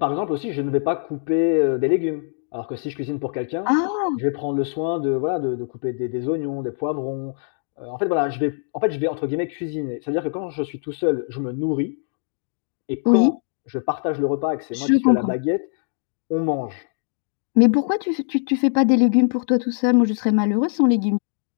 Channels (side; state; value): right; silent; digital silence